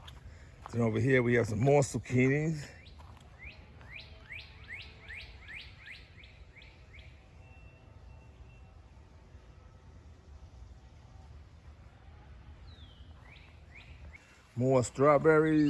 Then over here we have some more zucchinis. More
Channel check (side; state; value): both; identical; correlation 1.00